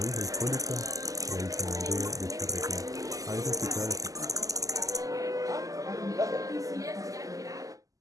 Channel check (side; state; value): left; late; 0.17 ms